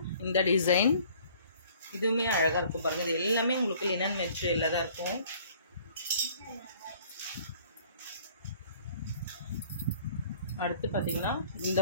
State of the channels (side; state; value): both; inverted; correlation -0.55